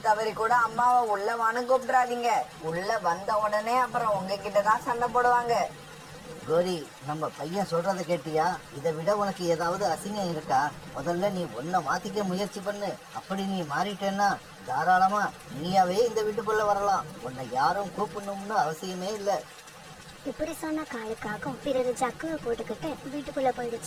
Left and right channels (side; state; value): both; identical; correlation 1.00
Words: தவறி கூட அம்மாவை உள்ள வான்னு கூப்பிடாதீங்க. உள்ள வந்த உடனே அப்புறம் உங்ககிட்ட தான் சண்டை போடுவாங்க. கோரி, நம்ம பையன் சொல்றத கேட்டியா? இதை விட உனக்கு ஏதாவது அசிங்கம் இருக்கா? முதல்ல நீ உன்னை மாத்திக்க முயற்சி பண்ணு. அப்படி நீ மாறிட்டேன்னா தாராளமா நீயாவே இந்த வீட்டுக்குள்ள வரலாம். உன்னை யாரும் கூப்பிடணும்னு அவசியமே இல்லை. இப்படி சொன்ன காலுக்காகவும் பிறகு ஜக்குவை போட்டுக்கிட்டு வீட்டுக்குள்ள